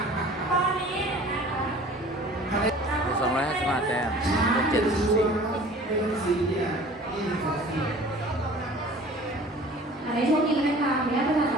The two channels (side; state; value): both; normal; correlation 0.46